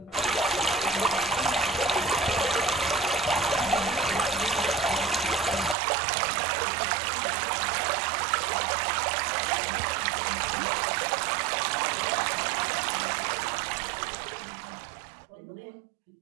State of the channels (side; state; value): left; drops out; at 5.8 s